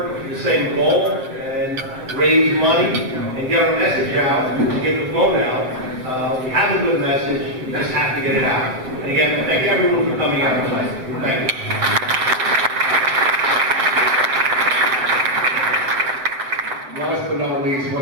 for the same goal and raise money and get our message out, and get the vote out. We have a good message, we just have to get it out. And again, thank everyone for coming out tonight. Thank you. Last but not least,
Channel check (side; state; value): left; late; 7.7 ms